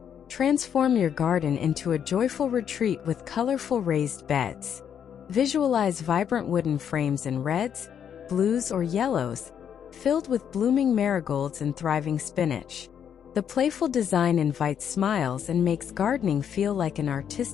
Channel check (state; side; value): quieter; right; 8.5 dB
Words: Transform your garden into a joyful retreat with colorful raised beds. Visualize vibrant wooden frames in reds, blues, or yellows, filled with blooming marigolds and thriving spinach. The playful design invites smiles and makes gardening feel like an